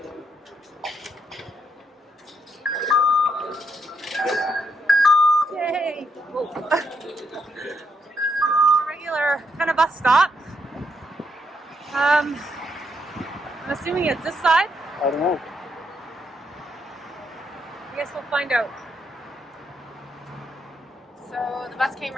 Yay! Whoa. A regular kind of bus stop. I'm assuming it's this side. I don't know. I guess we'll find out. So the bus came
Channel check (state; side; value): normal; both; correlation 0.77